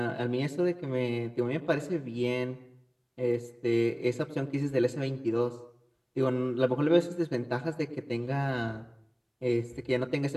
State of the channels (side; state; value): both; identical; correlation 1.00